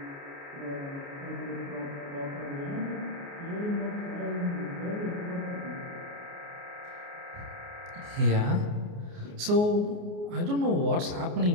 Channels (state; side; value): late; left; 29 ms